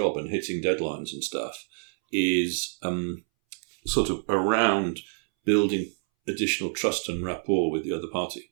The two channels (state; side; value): silent; left; 60 dB below the other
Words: and hitting deadlines and stuff, is sort of around building additional trust and rapport with the other party.